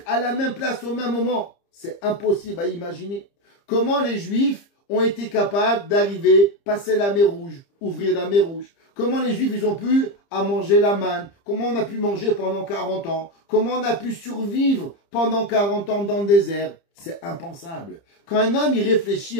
à la même place au même moment? C'est impossible à imaginer. Comment les juifs ont été capables d'arriver, passer la mer Rouge, ouvrir la mer Rouge. Comment les Juifs, ils ont pu à manger la manne. Comment on a pu manger pendant 40 ans. Comment on a pu survivre pendant 40 ans dans le désert. C'est impensable. Quand un homme, il réfléchit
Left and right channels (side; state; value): right; late; 30 ms